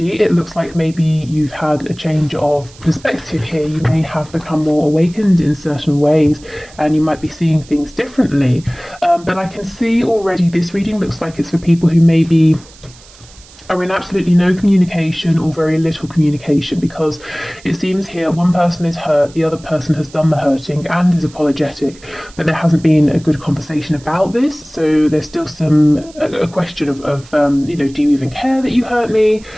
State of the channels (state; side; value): noise; right; hiss, 23 dB below the sound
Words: it looks like maybe you've had a change of perspective here. You may have become more awakened in certain ways, and you might be seeing things differently. But I can see already this reading looks like it's for people who maybe are in absolutely no communication or very little communication, because it seems here one person is hurt, the other person has done the hurting and is apologetic, but there hasn't been a good conversation about this. So there's still a question of do you even care that you hurt me?